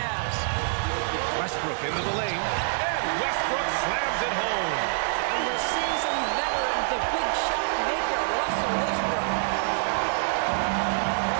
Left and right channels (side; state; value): left; silent; digital silence